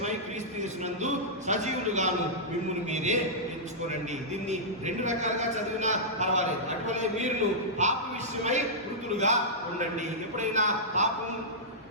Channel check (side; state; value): both; normal; correlation -0.12